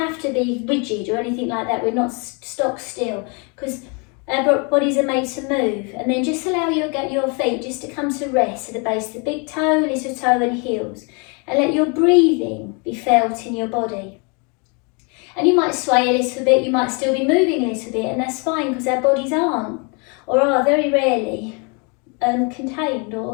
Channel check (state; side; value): quieter; right; 33.7 dB